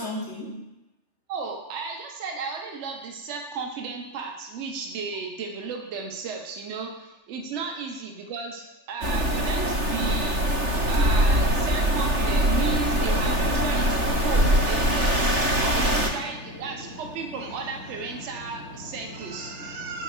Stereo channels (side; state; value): left; late; 3.3 ms